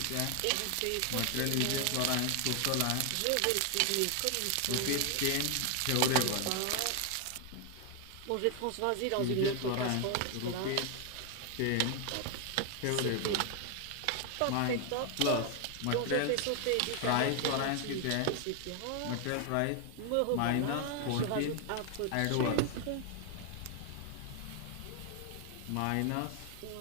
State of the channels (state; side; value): different; both; correlation 0.00